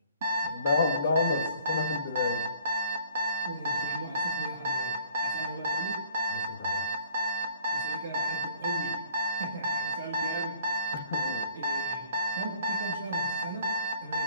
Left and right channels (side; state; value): both; inverted; correlation -0.57